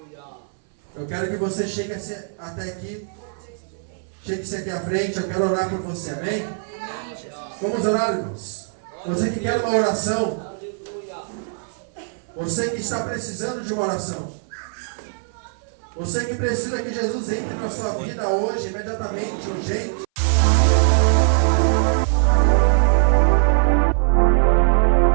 Eu quero que você chegue até aqui. Chegue-se aqui à frente, eu quero orar por você, amém? Amém, Jesus. Vamos orar, irmãos. Você que quer uma oração. Você que está precisando de uma oração. Você que precisa que Jesus entre na sua vida hoje, imediatamente, urgente.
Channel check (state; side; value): silent; left; 61 dB below the other